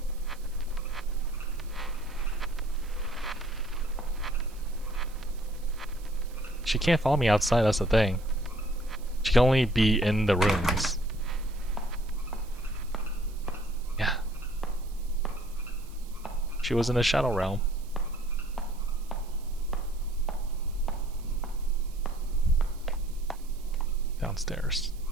She can't follow me outside, that's the thing. She can only be in the rooms. Yeah. She was in the Shadow Realm. Downstairs.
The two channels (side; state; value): right; noise; hiss, 24 dB below the sound